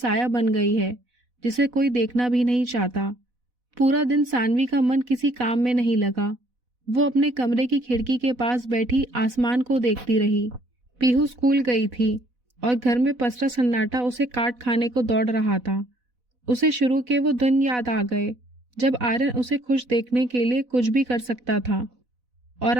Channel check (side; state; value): left; late; 4.1 ms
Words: बन गई है जिसे कोई देखना भी नहीं चाहता। पूरा दिन सानवी का मन किसी काम में नहीं लगा। वो अपने कमरे की खिड़की के पास बैठी आसमान को देखती रही। पीहू स्कूल गई थी और घर में पसरा सन्नाटा उसे काट खाने को दौड़ रहा था। उसे शुरू के वो दिन याद आ गए जब आर्यन उसे खुश देखने के लिए कुछ भी कर सकता था, और